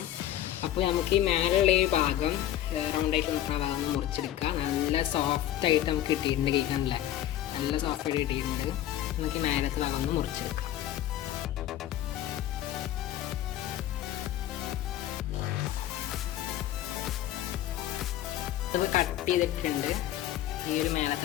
അപ്പോൾ നമുക്ക് ഈ മേലുള്ള ഈ ഭാഗം റൗണ്ടായിട്ട് നിൽക്കുന്ന ഭാഗം ഒന്ന് മുറിച്ചെടുക്കാം. നല്ല സോഫ്റ്റായിട്ട് നമുക്ക് കിട്ടിയിട്ടുണ്ട്. കേൾക്കാനല്ലേ, നല്ല സോഫ്റ്റായിട്ട് കിട്ടിയിട്ടുണ്ട്. നമുക്ക് ഈ മേലത്തെ ഭാഗം ഒന്ന് മുറിച്ചെടുക്കാം. അത് കട്ട് ചെയ്തിട്ടുണ്ട്. ഈ ഒരു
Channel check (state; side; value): quieter; right; 12.5 dB